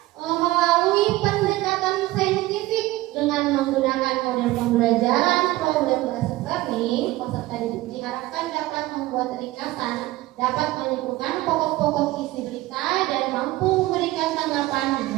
melalui pendekatan saintifik dengan menggunakan model pembelajaran problem based learning. Peserta didik diharapkan dapat membuat ringkasan, dapat menyimpulkan pokok-pokok isi berita dan mampu memberikan tanggapan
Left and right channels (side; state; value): left; quieter; 17.9 dB